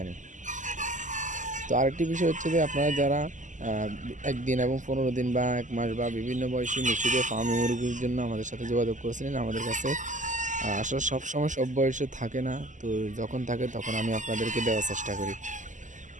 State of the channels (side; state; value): left; late; 0.37 ms